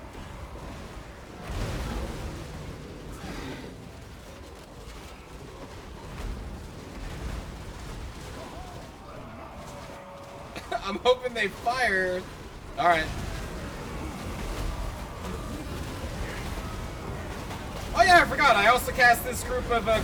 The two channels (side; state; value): both; identical; correlation 1.00